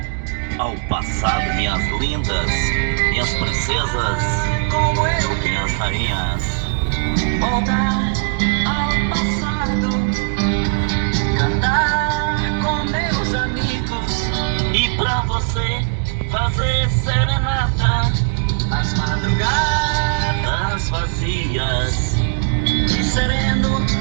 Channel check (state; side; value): silent; left; digital silence